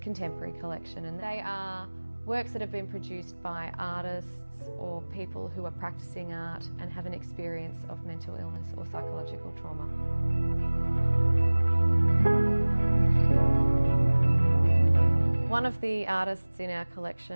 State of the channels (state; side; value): inverted; both; correlation -1.00